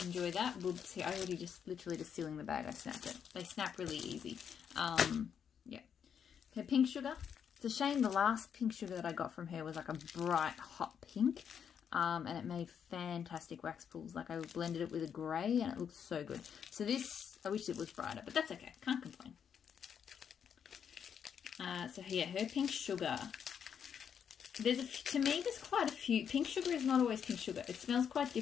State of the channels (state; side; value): quieter; right; 7.8 dB